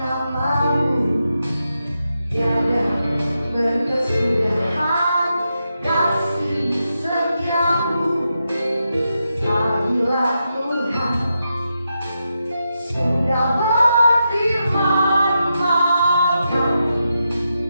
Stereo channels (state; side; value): inverted; both; correlation -0.86